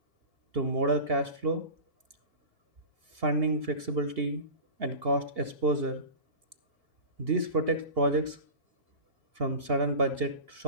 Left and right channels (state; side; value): late; left; 2.8 ms